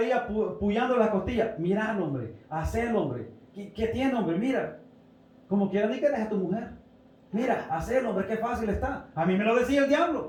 puyando las costillas. Mira, hombre, hacelo, hombre. ¿Qué tiene, hombre? Mira. Como quiera ni que dejes a tu mujer. Mira, hacelo, hombre, qué fácil está. A mí me lo decía el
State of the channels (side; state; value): both; identical; correlation 1.00